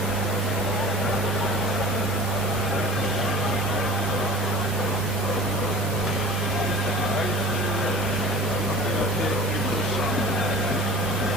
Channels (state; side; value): normal; both; correlation 0.41